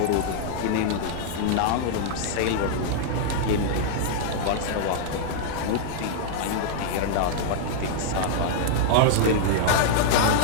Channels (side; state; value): both; different; correlation -0.01